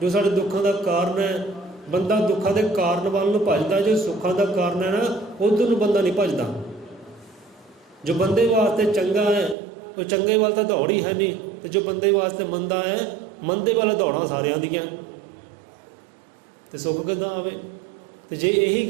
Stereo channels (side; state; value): left; drops out; at 9.6 s